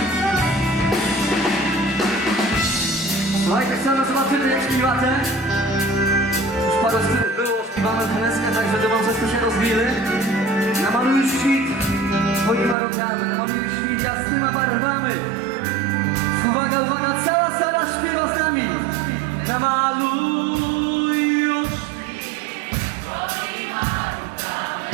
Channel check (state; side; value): drops out; left; at 12.8 s